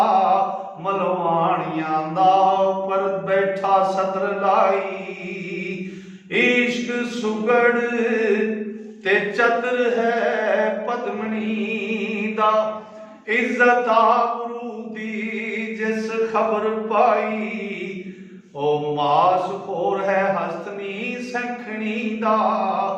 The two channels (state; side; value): identical; both; correlation 1.00